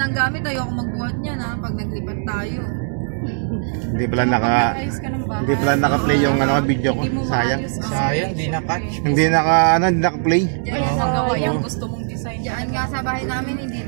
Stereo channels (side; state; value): left; silent; 66 dB below the other